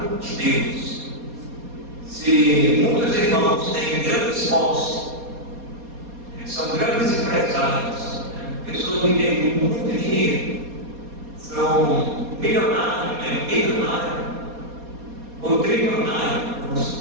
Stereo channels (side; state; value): left; late; 4.2 ms